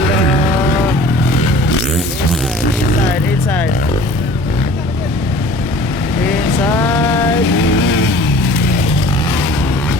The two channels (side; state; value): both; normal; correlation 0.46